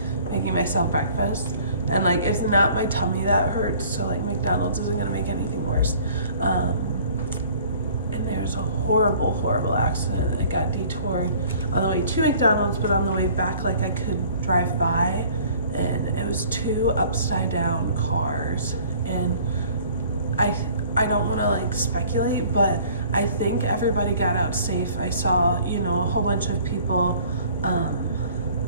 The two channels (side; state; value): both; inverted; correlation -0.53